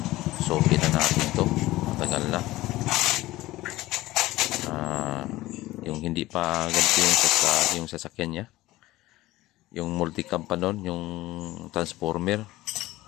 So kita natin to. Matagal na. Yung hindi pa ganito yung sasakyan niya. Yung multicam pa nun, yung transformer.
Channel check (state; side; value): quieter; right; 17.5 dB